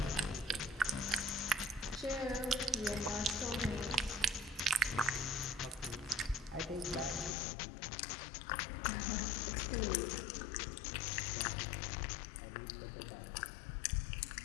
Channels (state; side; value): drops out; right; at 7.4 s